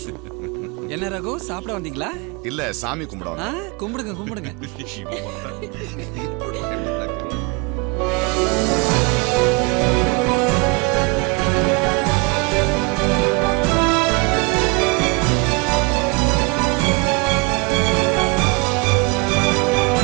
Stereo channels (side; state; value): left; quieter; 28.4 dB